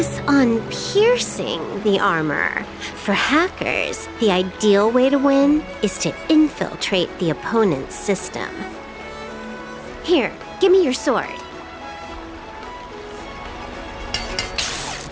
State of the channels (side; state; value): both; identical; correlation 1.00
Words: on piercing the armor? For hackers, the ideal way to win is to infiltrate the opponent's system. Here, give me your sword.